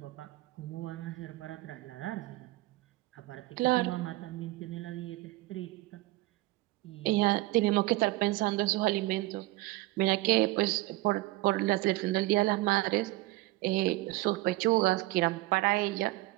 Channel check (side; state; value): left; quieter; 19.5 dB